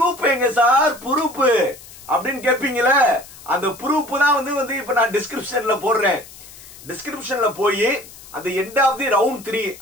எங்க சார் ப்ரூஃப் அப்படின்னு கேட்பீங்கள. அந்த ப்ரூஃப் தான் வந்து இப்ப நான் டிஸ்கிரிப்ஷன்ல போடுறேன். டிஸ்கிரிப்ஷன்ல போய் அந்த எண்ட் ஆஃப் தி ரவுண்ட் 3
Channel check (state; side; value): noise; left; hiss, 19 dB below the sound